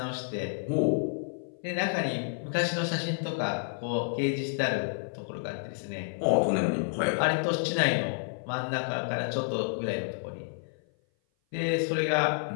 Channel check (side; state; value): right; silent; 56 dB below the other